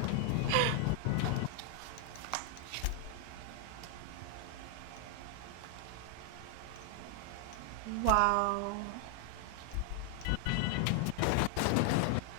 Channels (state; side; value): different; both; correlation 0.00